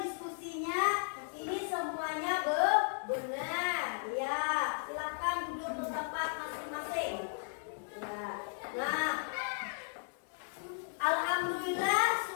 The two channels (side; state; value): right; silent; digital silence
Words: ini semuanya benar. Ya, silakan duduk di tempat masing-masing. Ya. Nah, alhamdulillah